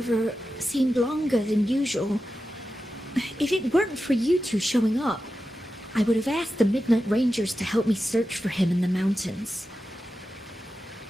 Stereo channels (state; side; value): normal; both; correlation 0.91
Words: seemed longer than usual. If it weren't for you two showing up, I would have asked the Midnight Rangers to help me search for him in the mountains.